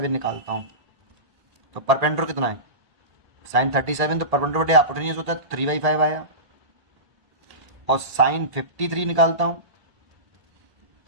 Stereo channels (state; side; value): late; left; 1.8 ms